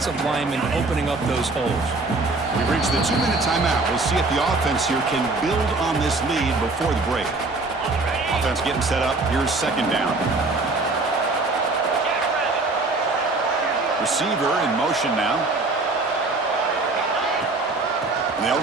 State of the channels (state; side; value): quieter; left; 3.4 dB